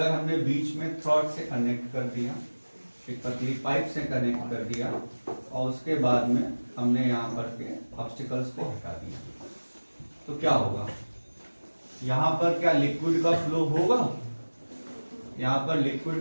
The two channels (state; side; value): inverted; both; correlation -1.00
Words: हमने बीच में थ्रॉड से कनेक्ट कर दिया, एक पतली पाइप से कनेक्ट कर दिया और उसके बाद में हमने यहाँ पर के ऑब्स्टिकल्स को हटा दिया, तो क्या होगा? यहाँ पर क्या लिक्विड का फ्लो होगा? यहाँ पर